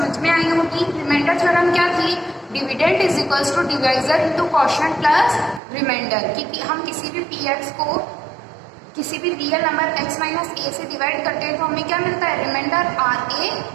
में आई होगी। रिमाइंडर थ्योरम क्या थी? Dividend is equals to divisor into quotient plus remainder. कि हम किसी भी px को किसी भी real number x minus A से डिवाइड करते हैं तो हमें क्या मिलता है? रिमाइंडर आर ए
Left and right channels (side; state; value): left; drops out; at 5.6 s